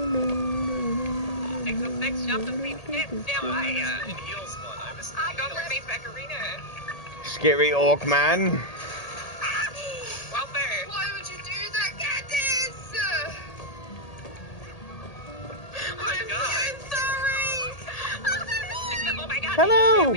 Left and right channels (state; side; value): late; right; 1.8 ms